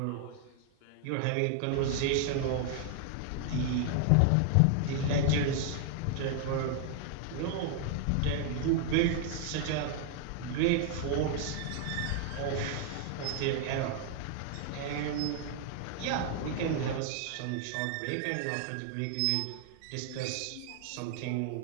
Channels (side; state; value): both; different; correlation 0.00